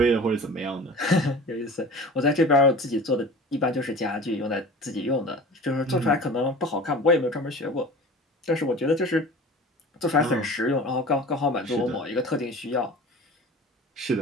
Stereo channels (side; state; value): both; normal; correlation 0.39